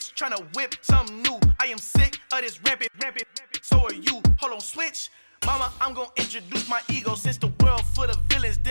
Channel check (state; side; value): inverted; both; correlation -1.00